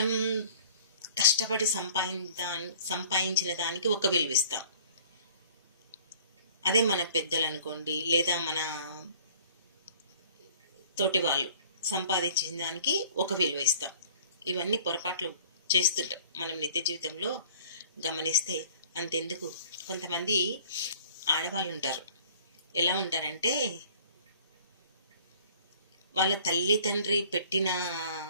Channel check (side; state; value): both; inverted; correlation -0.52